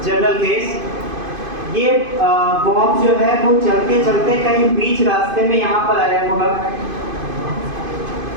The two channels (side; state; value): left; late; 2.5 ms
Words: जनरल केस, ये बॉब जो है वो चलते चलते कहीं बीच रास्ते में यहाँ पर आया होगा,